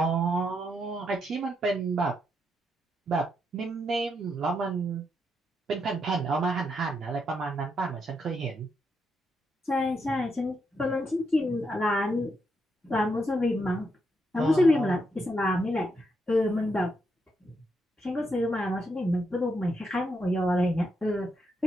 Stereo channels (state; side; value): normal; both; correlation 0.80